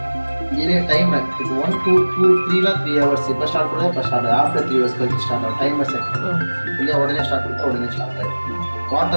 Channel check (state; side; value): inverted; both; correlation -1.00